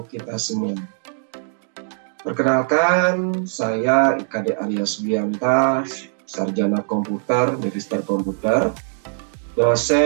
kita semua. Perkenalkan, saya IKD Arya Subianta, Sarjana Komputer, Magister Komputer,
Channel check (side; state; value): left; silent; digital silence